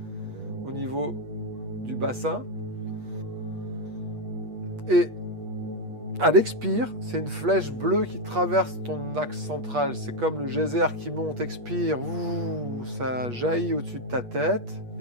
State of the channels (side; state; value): left; late; 8.3 ms